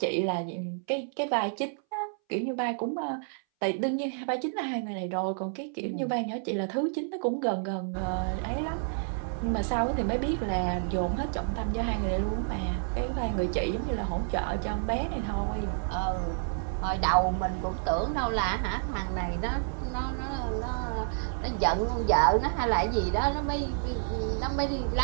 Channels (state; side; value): silent; left; 58 dB below the other